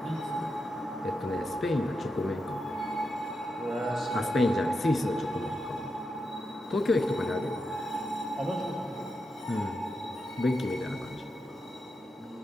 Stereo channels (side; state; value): both; normal; correlation 0.86